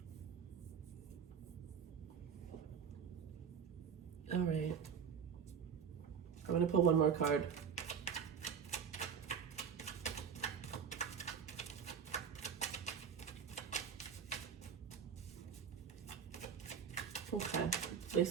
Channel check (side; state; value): left; quieter; 7.0 dB